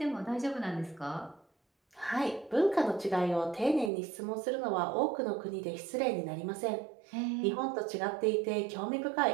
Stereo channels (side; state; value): left; drops out; at 3.9 s